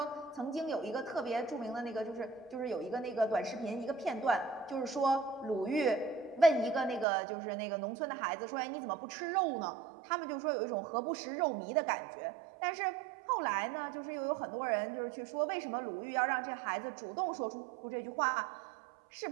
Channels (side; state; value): left; drops out; at 7.1 s